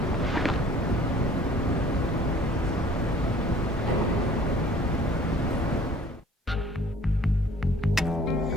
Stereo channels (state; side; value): normal; both; correlation 0.53